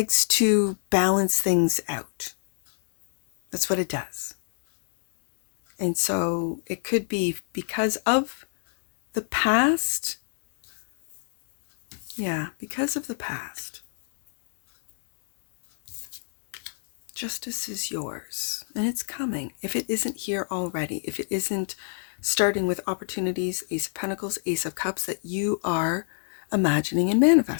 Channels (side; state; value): right; silent; digital silence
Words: to balance things out. That's what it does. And so it could be because of the past. Yeah, because of the past. Justice is yours, and it's coming. If it isn't here already, if it isn't starting with opportunities, Ace of Pentacles, Ace of Cups, that you are imagining and